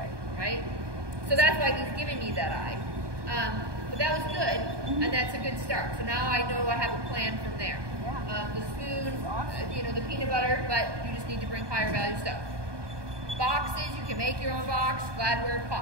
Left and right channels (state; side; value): late; left; 1.2 ms